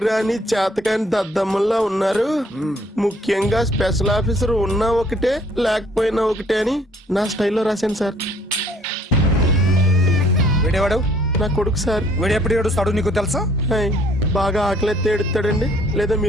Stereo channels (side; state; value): both; normal; correlation 0.61